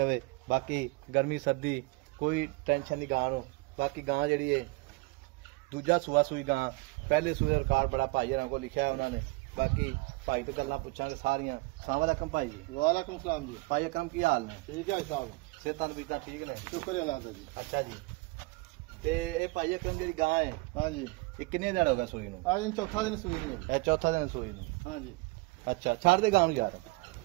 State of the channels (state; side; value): quieter; left; 25.0 dB